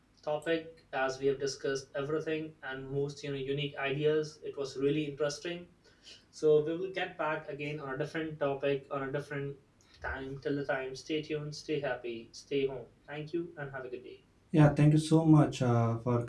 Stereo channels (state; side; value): identical; both; correlation 1.00